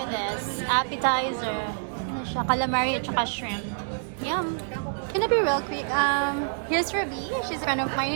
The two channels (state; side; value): silent; left; digital silence